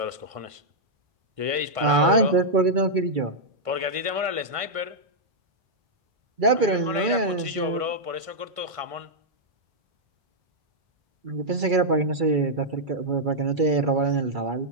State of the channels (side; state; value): left; late; 1.5 ms